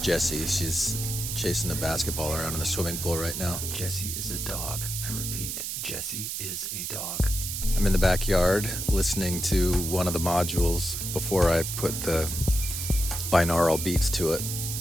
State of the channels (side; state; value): right; noise; hiss, 4 dB below the sound